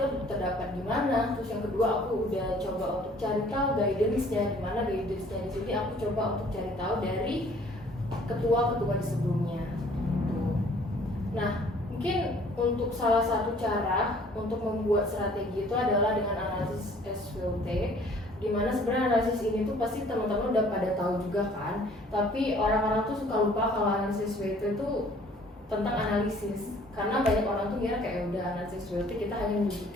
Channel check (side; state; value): both; normal; correlation 0.56